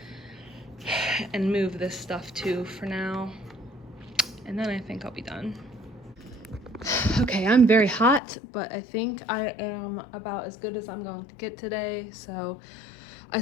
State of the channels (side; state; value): right; drops out; at 8.2 s